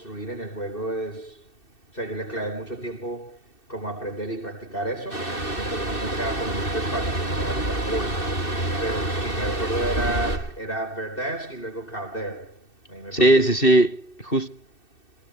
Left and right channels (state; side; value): late; right; 2.6 ms